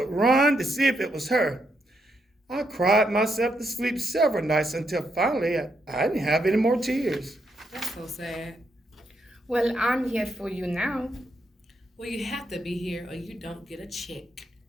run to see if it was her. I cried myself to sleep several nights until finally I didn't have any more tears. That's so sad. Well, I'm here for you now. Well, you have to be here or you don't get a check.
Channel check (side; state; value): both; normal; correlation 0.79